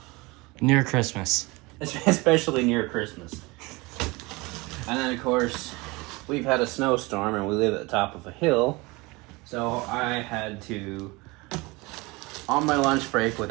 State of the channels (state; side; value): quieter; left; 24.2 dB